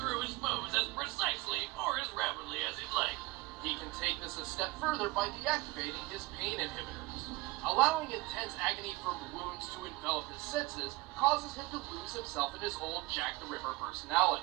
his foes as precisely or as rapidly as he'd like. He can take this a step further by deactivating his pain inhibitors. Allowing intense agony from wounds to envelop his senses causes him to lose himself in his old Jack the Ripper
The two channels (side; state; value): left; quieter; 21.6 dB